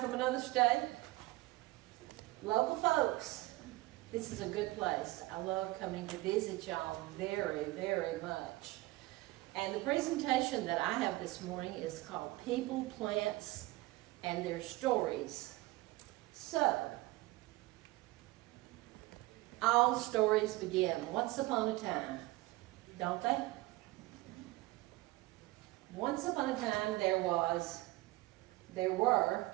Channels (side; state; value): left; quieter; 19.8 dB